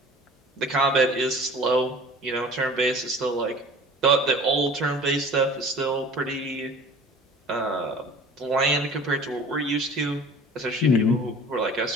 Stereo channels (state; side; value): normal; both; correlation 0.44